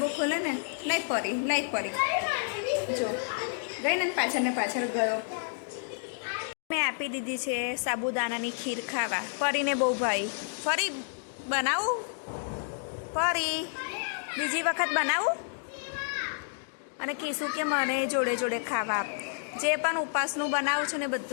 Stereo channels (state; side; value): silent; right; digital silence